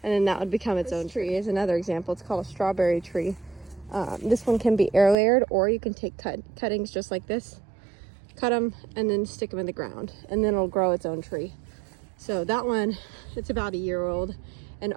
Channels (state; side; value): drops out; left; at 5.2 s